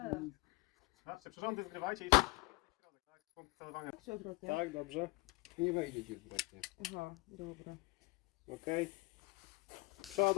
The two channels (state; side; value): quieter; right; 24.4 dB